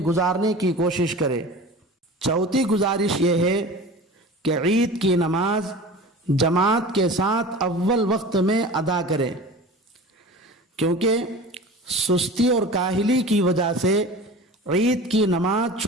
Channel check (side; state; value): both; normal; correlation 0.36